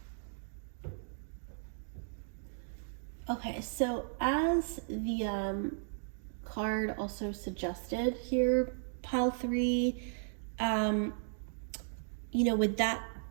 Okay, so as the card also suggested here, pile 3, with that,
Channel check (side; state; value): left; silent; digital silence